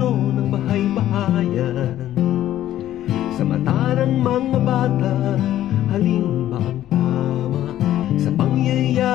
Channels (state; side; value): quieter; right; 12.8 dB